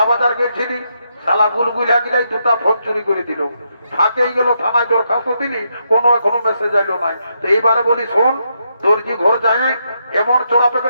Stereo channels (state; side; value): inverted; both; correlation -0.80